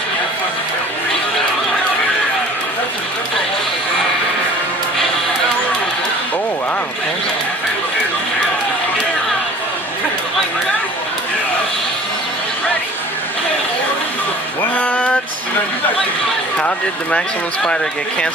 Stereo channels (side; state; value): both; normal; correlation 0.47